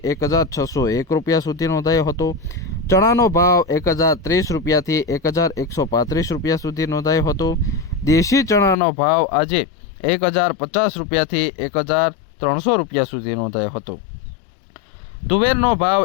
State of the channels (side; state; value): right; drops out; at 8.8 s